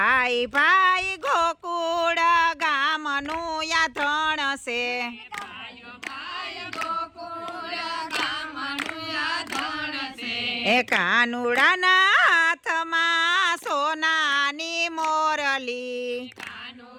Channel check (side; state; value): both; identical; correlation 1.00